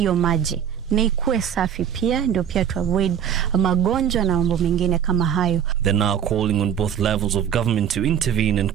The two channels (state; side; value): quieter; left; 8.9 dB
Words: maji na ikuwe safi pia, ndio pia to avoid magonjwa na mambo mengine kama hayo. They're now calling on both levels of government to intervene and